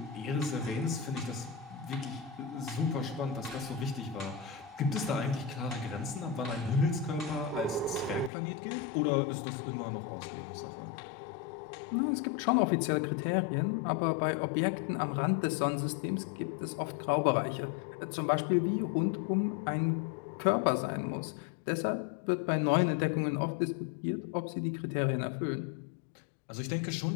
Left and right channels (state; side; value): drops out; right; at 8.3 s